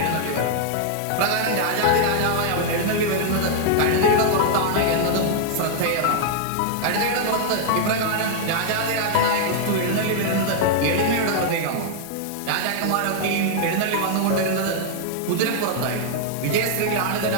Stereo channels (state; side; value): different; both; correlation -0.01